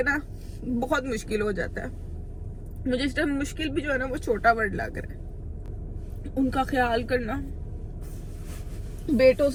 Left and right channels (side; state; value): both; identical; correlation 1.00